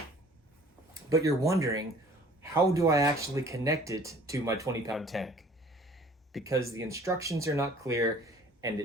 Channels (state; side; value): normal; both; correlation 0.51